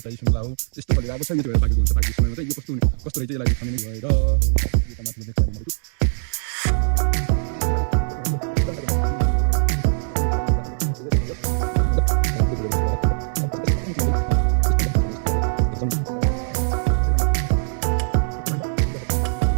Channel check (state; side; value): silent; left; digital silence